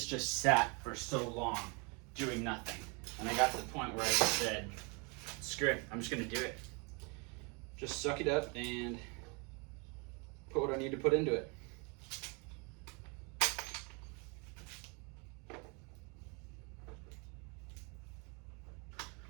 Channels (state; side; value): quieter; left; 32.1 dB